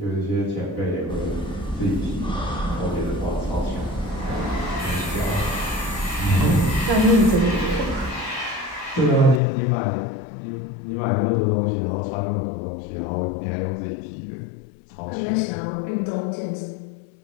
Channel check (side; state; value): right; drops out; at 9.4 s